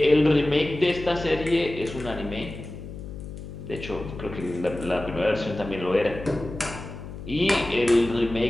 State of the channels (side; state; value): left; noise; hum, 11 dB below the sound